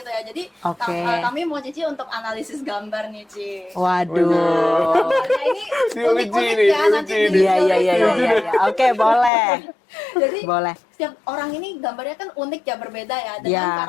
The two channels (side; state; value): right; drops out; at 9.3 s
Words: ya. Jadi Oke. kami mau Cici untuk analisis gambar nih, Ci. Waduh. Gambarnya ini unik-unik Diuji ya, nih, nanti diuji di nih. Iya, iya, iya, iya, iya. Oke, boleh. Jadi Boleh. setiap orang ini gambarnya kan unik ya, berbeda ya dengan Ya.